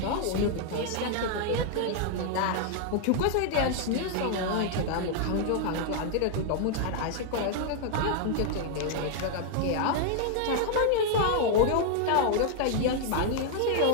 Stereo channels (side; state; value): both; different; correlation 0.00